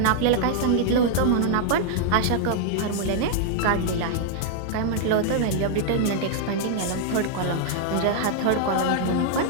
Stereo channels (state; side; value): different; both; correlation 0.00